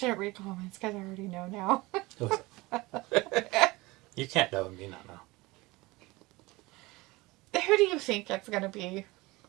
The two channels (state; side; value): quieter; left; 21.8 dB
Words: read comments because I already know now. Who is it? You can't know and me not know. Who do you think it's going to be?